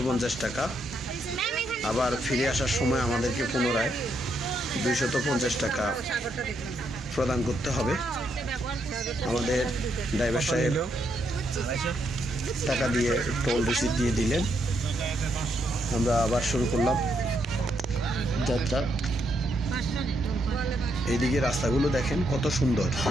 টাকা। আবার ফিরে আসার সময় আমাদেরকে পুনরায় 250 টাকা প্রদান করতে হবে। আমাদের ড্রাইভার সাহেব টাকা দিয়ে টোল রিসিপ্ট দিয়ে দিলেন। আমরা আবার শুরু করলাম যাত্রা। এইদিকে রাস্তাগুলো দেখেন কত সুন্দর।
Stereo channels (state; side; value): normal; both; correlation 0.77